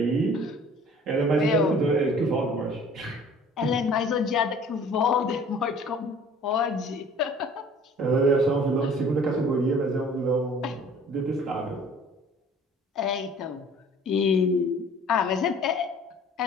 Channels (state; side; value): normal; both; correlation 0.50